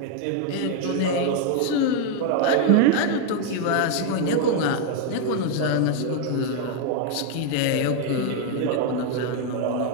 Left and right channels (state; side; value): different; both; correlation 0.00